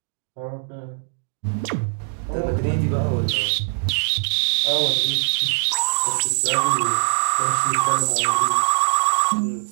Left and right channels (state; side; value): silent; left; digital silence